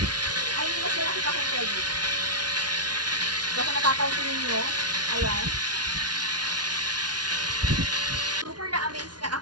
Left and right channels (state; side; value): late; left; 0.69 ms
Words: Ay, mas malaki pa kung large dito. So, kung natapansin ninyo, ayan. Super na-amaze nga